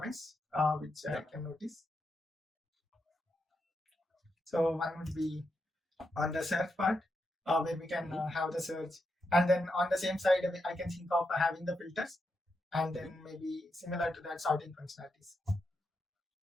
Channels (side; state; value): both; normal; correlation 0.84